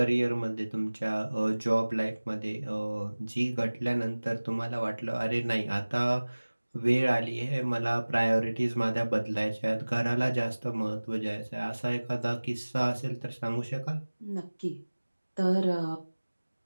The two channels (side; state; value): both; inverted; correlation -1.00